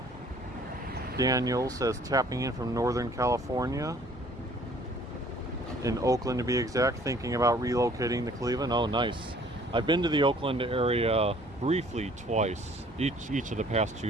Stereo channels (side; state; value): both; normal; correlation 0.56